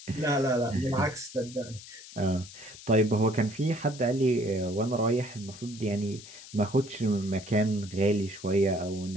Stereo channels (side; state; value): left; noise; hiss, 16 dB below the sound